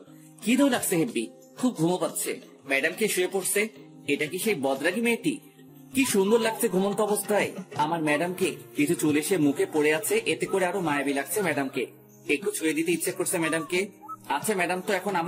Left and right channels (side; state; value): both; identical; correlation 1.00